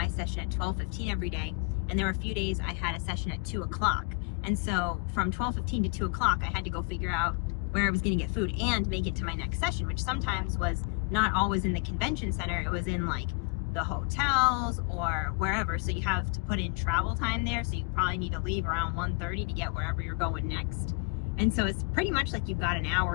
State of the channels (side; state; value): right; quieter; 31.6 dB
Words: session at 12:15 every day, and there were a few days I had a session at 2 o'clock. And so from 12:15 to 2 o'clock, I had to go figure out where I was going to get food and make it to my next session, which sometimes was not always in the convention center. It was in like the hotels or wherever. So you have to put in travel time there. So you probably need to leave around 1:30 to get wherever you're going next. And so it's pretty much like you've got an hour